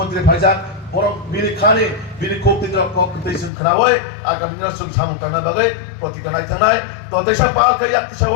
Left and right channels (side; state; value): right; drops out; at 3.5 s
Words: ভাইজান বরং বিনি খানে বিনি কোপতিদ্র ককতেসন খনাওয় আগামী দিন সুং সামুং কানা বাগে প্রতিকা নাইথানাই তো দেশা পাল কাই